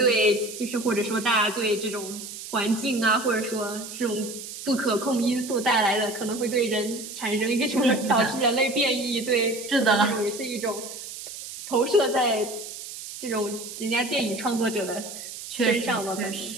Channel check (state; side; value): noise; right; hiss, 11 dB below the sound